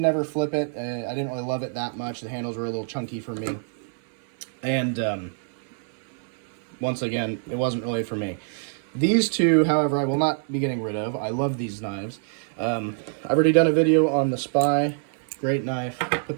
ever flip it. I didn't really love it that much. The handles were a little chunky for me. And once again, it wasn't really for me. These two, however, I will not be getting rid of. I love these knives. I've already done a video on the Spy. Great knife.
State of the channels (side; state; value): left; silent; 59 dB below the other